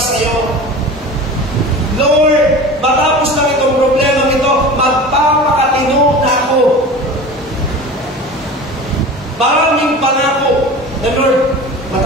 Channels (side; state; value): both; normal; correlation 0.35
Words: sa iyo. Lord, matapos lang itong problema nito, magpapakatino na ako. Maraming pangako na, Lord,